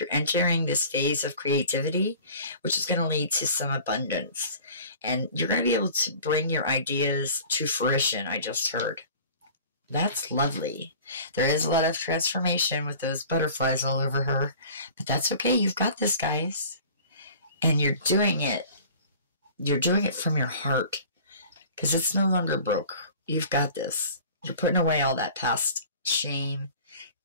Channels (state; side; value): inverted; both; correlation -0.44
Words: entering this phase of creativity, which is going to lead to some abundance. And you're going to be able to bring your ideas to fruition, I just heard. That's lovely. There is a lot of transformation with those butterflies all over her. But that's okay. You've got this, guys. And you're doing it. You're doing it from your heart. Because it's no longer broke. You've got this. You're putting away all that past shame,